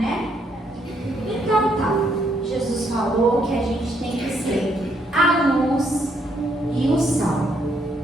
Então tá. Jesus falou que a gente tem que ser a luz e o sal.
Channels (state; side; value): normal; both; correlation 0.72